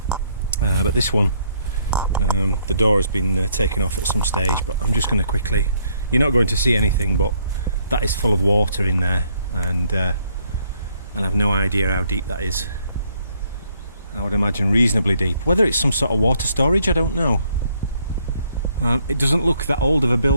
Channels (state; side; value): inverted; both; correlation -0.69